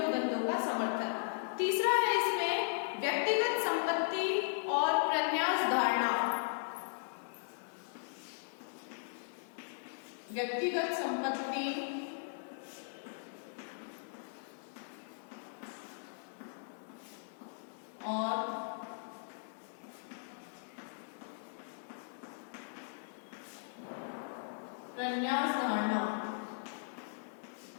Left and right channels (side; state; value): right; silent; 53 dB below the other